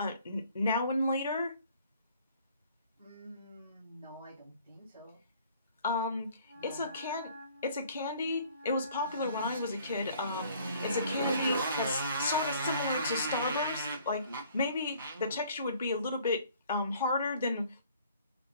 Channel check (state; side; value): inverted; both; correlation -0.56